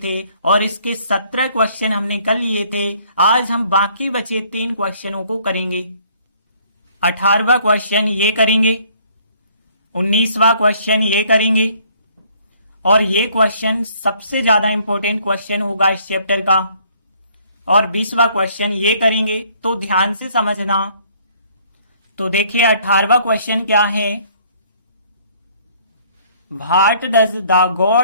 और इसके 17 क्वेश्चन हमने कर लिए थे। आज हम बाकी बचे 3 क्वेश्चनों को करेंगे। 18वां क्वेश्चन ये करेंगे, 19वां क्वेश्चन ये करेंगे और ये क्वेश्चन सबसे ज्यादा इंपॉर्टेंट क्वेश्चन होगा इस चैप्टर का। और 20वां क्वेश्चन ये करेंगे, तो ध्यान से समझना। तो देखिए 18वां क्वेश्चन क्या है। What does the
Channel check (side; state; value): both; inverted; correlation -0.61